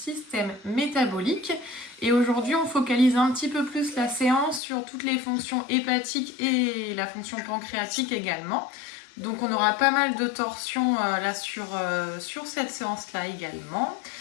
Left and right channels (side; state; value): right; drops out; at 4.6 s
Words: métabolique. Et aujourd'hui, on focalise un petit peu plus la séance sur toutes les fonctions hépatiques et la fonction pancréatique également. Donc on aura pas mal de torsions là sur cette séance-là également.